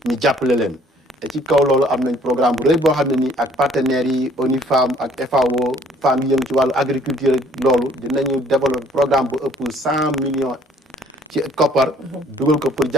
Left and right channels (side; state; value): both; normal; correlation 0.59